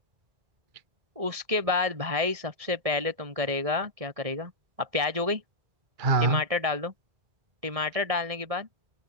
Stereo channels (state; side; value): late; left; 1.7 ms